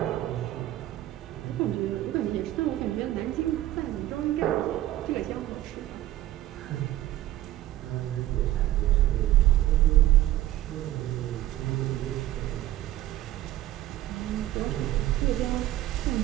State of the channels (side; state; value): left; quieter; 14.3 dB